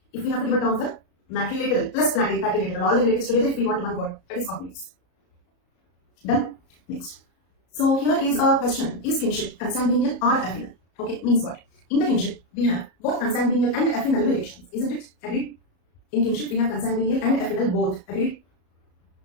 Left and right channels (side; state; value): right; late; 34 ms